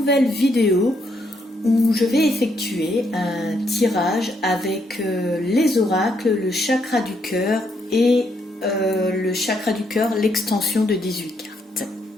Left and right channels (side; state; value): both; normal; correlation 0.75